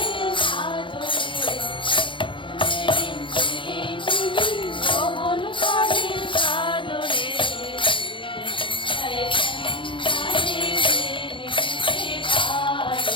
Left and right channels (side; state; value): right; late; 0.25 ms